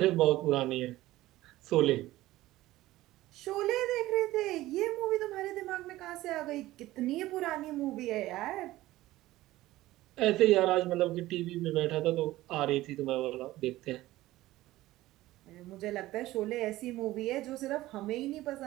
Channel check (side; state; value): left; quieter; 16.7 dB